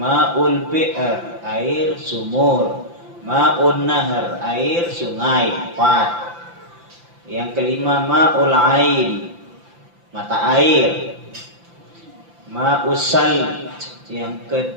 bi'r, air sumur. Ma'un nahar, air sungai. 4. Yang kelima ma'ul ain, mata air. Ma'us salj, yang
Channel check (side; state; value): left; late; 5.9 ms